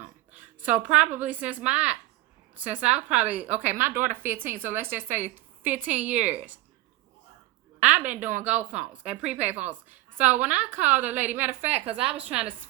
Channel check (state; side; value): quieter; left; 18.2 dB